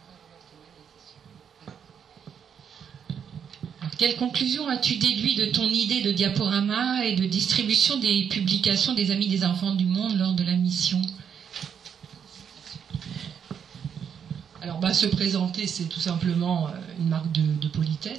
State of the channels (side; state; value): left; quieter; 7.7 dB